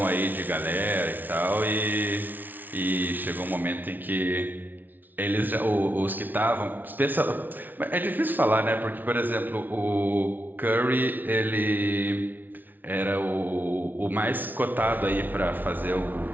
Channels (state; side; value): late; left; 0.085 ms